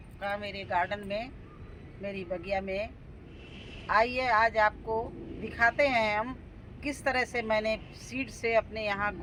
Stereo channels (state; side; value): identical; both; correlation 1.00